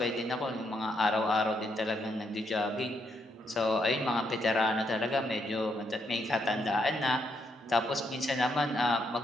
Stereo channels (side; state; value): both; normal; correlation 0.77